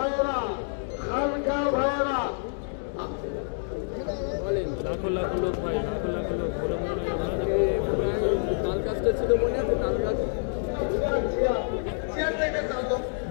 খানকা ভাইরা, লাখো লাখো লোক ভাই, লাখো লাখো লোক বলে মনে তাল কাজটা ছিল, মনে আছে তাল কাজ?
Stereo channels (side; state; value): right; silent; digital silence